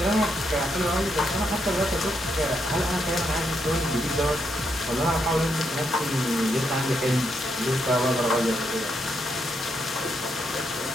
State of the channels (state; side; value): normal; both; correlation 0.79